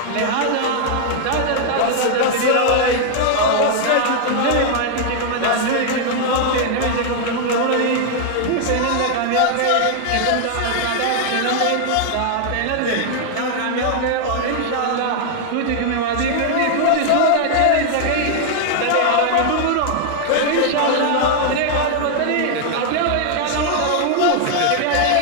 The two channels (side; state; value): both; different; correlation 0.00